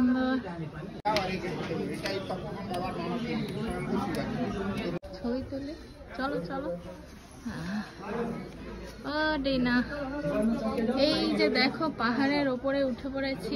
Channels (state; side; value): identical; both; correlation 1.00